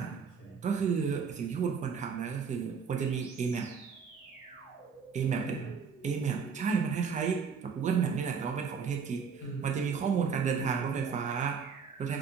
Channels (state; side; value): quieter; left; 6.1 dB